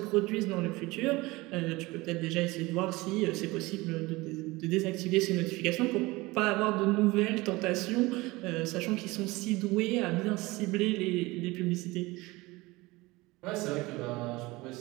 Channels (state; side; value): quieter; left; 21.6 dB